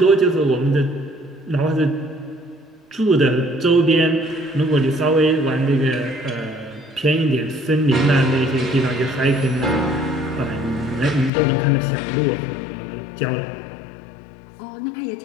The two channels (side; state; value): right; drops out; at 11.3 s